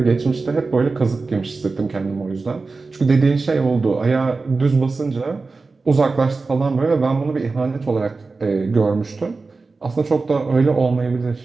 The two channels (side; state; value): left; quieter; 3.9 dB